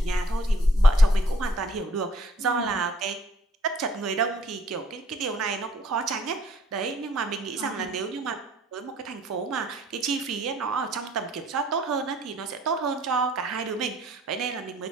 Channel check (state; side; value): normal; both; correlation 0.60